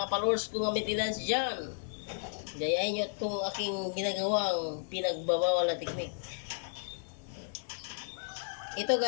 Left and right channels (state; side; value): silent; right; digital silence